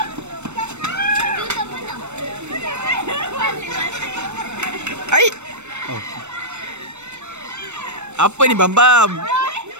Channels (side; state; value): left; late; 0.82 ms